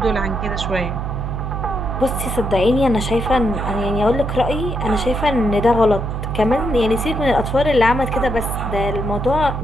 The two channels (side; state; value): right; noise; hum, 4 dB below the sound